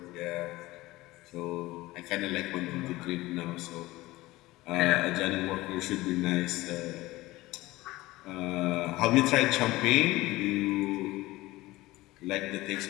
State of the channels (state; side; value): quieter; right; 18.9 dB